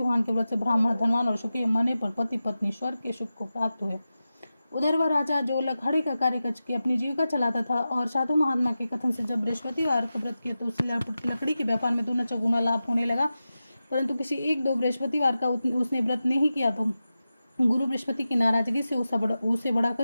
के व्रत से ब्राह्मण धनवान और सुखी मने पर पति पत्नी स्वर्ग के सुख को प्राप्त हुए। उधर वह राजा जो लखाड़े का कार्य करके अपनी जीविका चलाता था और साधु महात्मा के कथन से जब बृहस्पतिवार को व्रत किया तो उसे लकड़ी के व्यापार में दूना चौगुना लाभ होने लगा। परंतु किसी एक दो बृहस्पतिवार का उसने व्रत नहीं किया तो गुरु बृहस्पति की नाराजगी से उसे बड़ा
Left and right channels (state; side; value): inverted; both; correlation -0.93